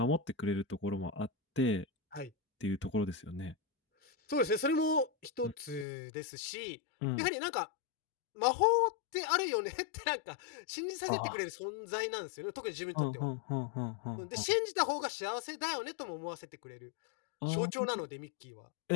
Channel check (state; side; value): drops out; right; at 5.9 s